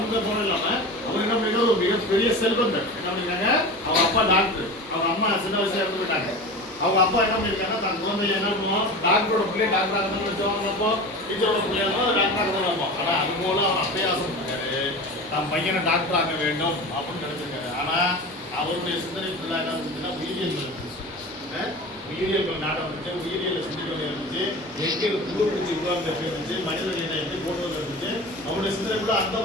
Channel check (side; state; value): right; noise; hum, 27 dB below the sound